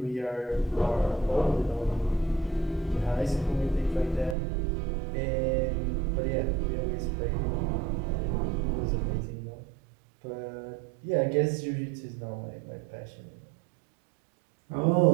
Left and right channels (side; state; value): left; drops out; at 4.4 s